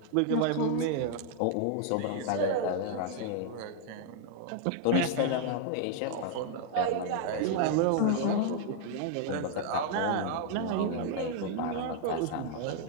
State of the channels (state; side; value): different; both; correlation -0.01